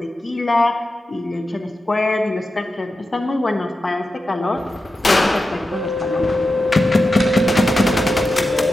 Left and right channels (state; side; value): normal; both; correlation 0.91